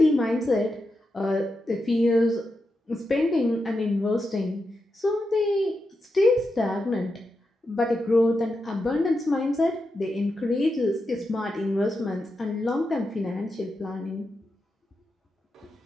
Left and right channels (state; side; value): normal; both; correlation 0.87